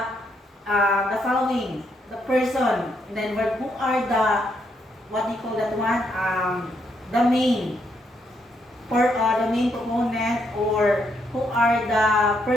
following? The person. And then who are the, what do you call that one? The main proponent, or who are the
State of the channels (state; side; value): normal; both; correlation 0.76